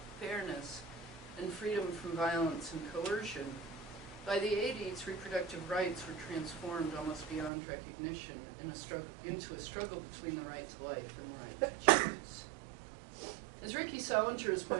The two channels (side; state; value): left; drops out; at 7.5 s